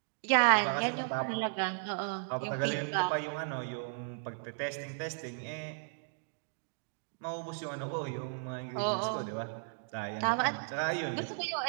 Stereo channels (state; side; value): silent; left; digital silence